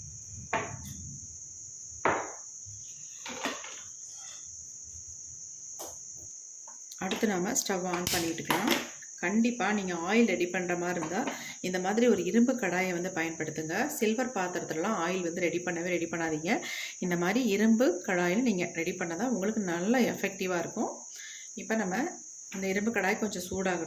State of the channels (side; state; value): both; identical; correlation 1.00